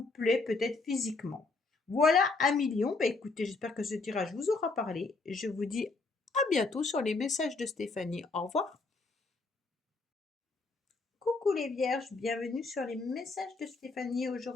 plaît peut-être physiquement. Voilà, un million. Bah, écoutez, j'espère que ce tirage vous aura parlé. Je vous dis à bientôt sur les messages de Stéphanie. Au revoir. Coucou les vierges, bienvenue sur les messages de Stéphanie.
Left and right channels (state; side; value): quieter; right; 3.7 dB